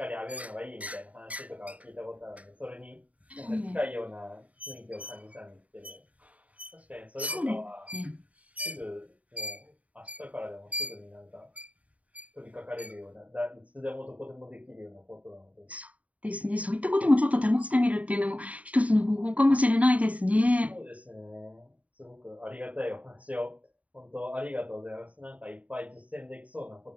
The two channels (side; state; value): left; late; 0.068 ms